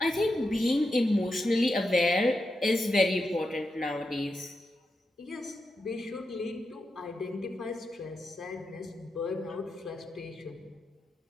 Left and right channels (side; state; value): both; normal; correlation 0.87